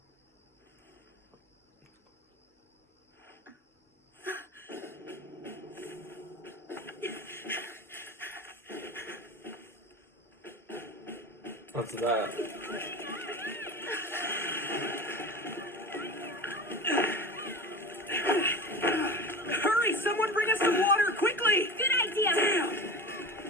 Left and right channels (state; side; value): normal; both; correlation 0.31